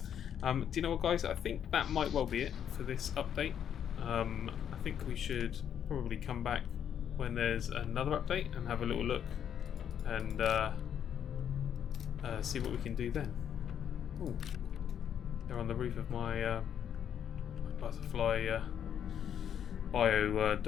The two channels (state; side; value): quieter; right; 9.0 dB